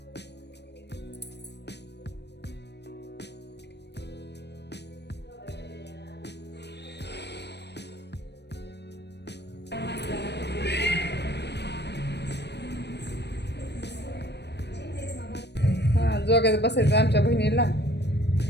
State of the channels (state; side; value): late; right; 0.50 ms